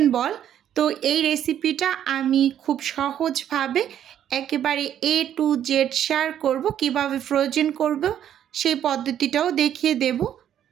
বল। তো এই রেসিপিটা আমি খুব সহজভাবে একেবারে A to Z শেয়ার করব, কিভাবে ফ্রোজেন করব সেই পদ্ধতিটাও দেখিয়ে দেব।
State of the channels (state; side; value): quieter; left; 10.3 dB